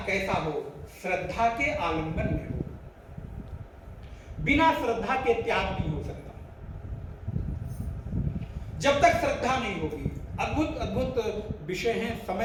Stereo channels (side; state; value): both; identical; correlation 1.00